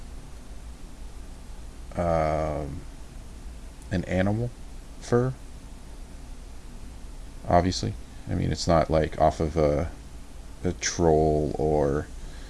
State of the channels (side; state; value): both; identical; correlation 1.00